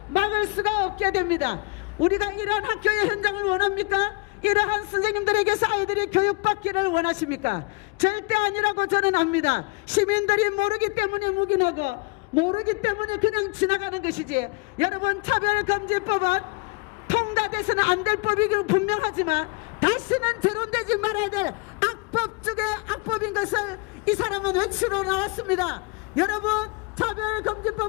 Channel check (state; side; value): quieter; right; 28.5 dB